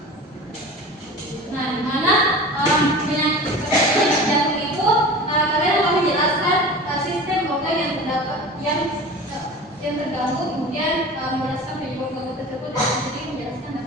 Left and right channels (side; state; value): both; normal; correlation 0.35